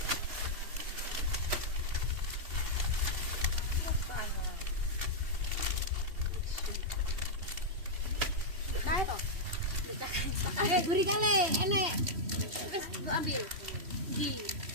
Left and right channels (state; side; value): late; left; 2.7 ms